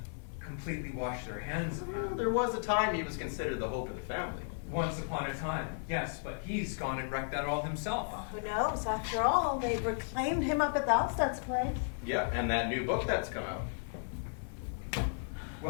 completely washed their hands of Well, him. there was a time he was considered the hope of the family. Once upon a time, yes, but he's gone and wrecked that all himself. Who knows? After all, they reclaimed him up at the Alsted's place. Yeah, and that new book that's come out.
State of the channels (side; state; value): right; silent; digital silence